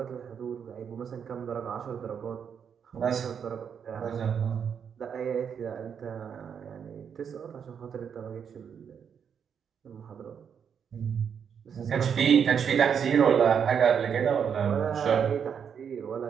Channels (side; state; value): left; quieter; 7.4 dB